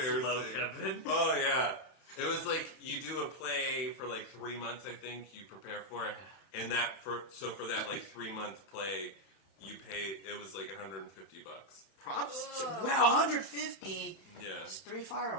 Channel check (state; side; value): late; right; 31 ms